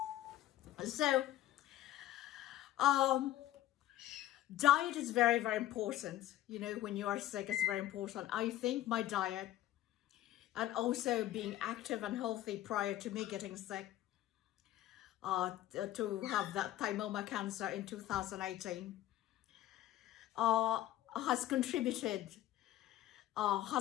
So, diet is very, very important. When you are sick, it's very important. I think my diet, and also being active and healthy prior to me getting sick, to have that thymoma cancer in 2018, has contributed,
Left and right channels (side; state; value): right; quieter; 13.9 dB